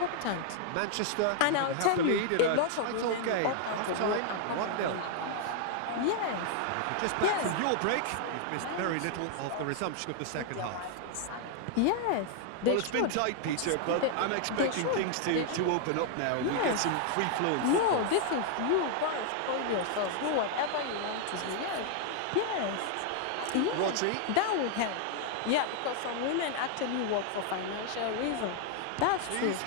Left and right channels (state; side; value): different; both; correlation 0.00